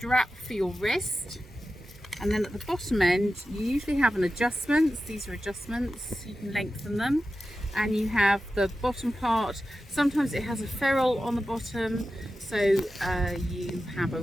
for your wrist, and then at the bottom end you usually have an adjustment. These are adjustments, you can lengthen them, and you have the bottom part. Sometimes it has a ferrule on the bottom, so you have a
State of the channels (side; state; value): both; normal; correlation 0.92